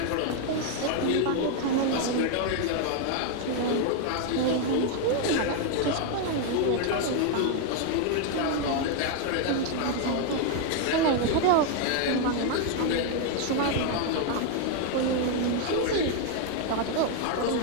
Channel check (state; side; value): different; both; correlation 0.01